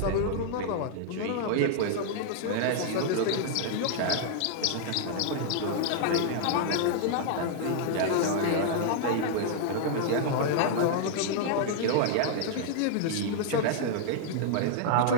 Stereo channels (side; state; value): both; different; correlation -0.01